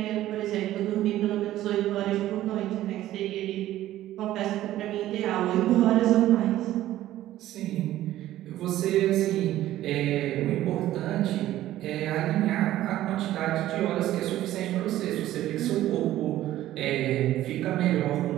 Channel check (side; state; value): left; quieter; 14.1 dB